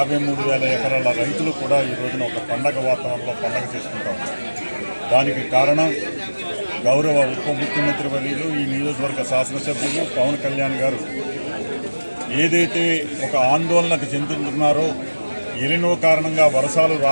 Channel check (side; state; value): both; inverted; correlation -1.00